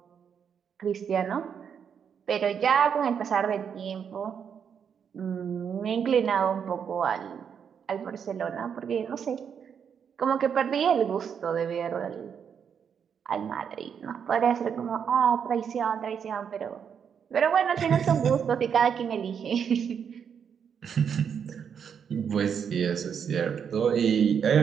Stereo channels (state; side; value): quieter; left; 7.4 dB